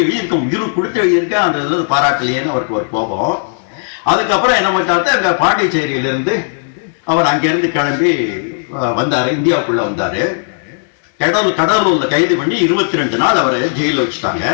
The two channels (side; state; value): right; silent; digital silence